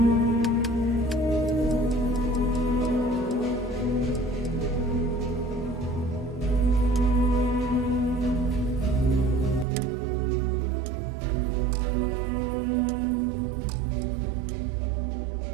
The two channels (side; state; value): left; drops out; at 9.7 s